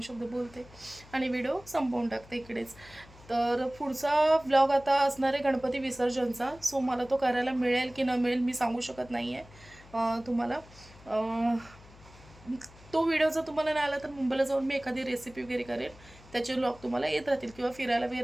शब्द बोलते आणि व्हिडिओ संपवून टाकते इकडेच. तर पुढचा व्लॉग आता असणार आहे गणपती विसर्जनचा. सो मला तो करायला मिळेल की न मिळेल मी सांगू शकत नाही आहे तुम्हाला. तो व्हिडिओ जर तुम्हाला नाही आला तर मुंबईला जाऊन मी एखादी रेसिपी वगैरे करेन. त्याचे ब्लॉग तुम्हाला येत राहतील. किंवा फिरायला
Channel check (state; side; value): noise; left; hum, 22 dB below the sound